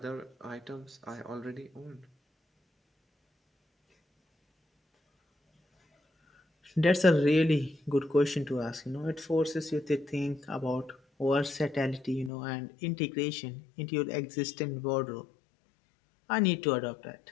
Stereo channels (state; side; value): drops out; right; at 12.3 s